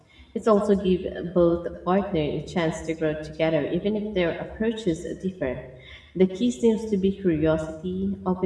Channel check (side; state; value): both; identical; correlation 1.00